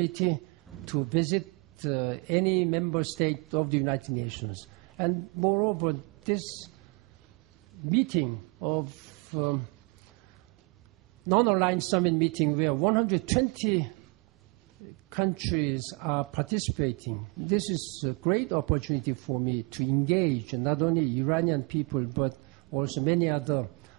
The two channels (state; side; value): quieter; left; 30.1 dB